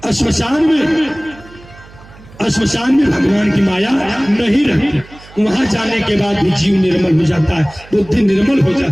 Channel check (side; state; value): right; noise; hum, 22 dB below the sound